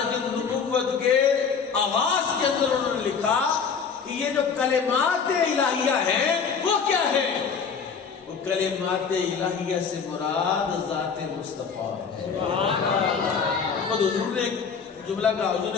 النبوت کے آغاز کے اندر انہوں نے لکھا کہ یہ جو کلمات الہیہ ہیں وہ کیا ہیں؟ وہ کلمات الہیہ سے مراد ذات مصطفیٰ۔ خود حضور نے ایک جملہ کہا، حضور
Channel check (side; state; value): right; quieter; 6.0 dB